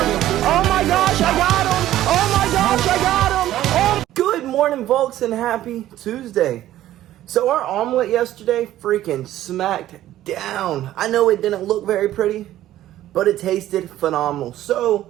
Good morning, folks, and happy Tuesday. So our omelet yesterday freaking smacked down. I know it didn't look very pretty, but it tasted phenomenal.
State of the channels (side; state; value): left; quieter; 13.5 dB